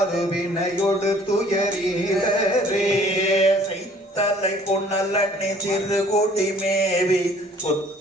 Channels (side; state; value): both; normal; correlation 0.55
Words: துயரீரே தலை பொன்னலண்ணி சிறு கொடி மேவி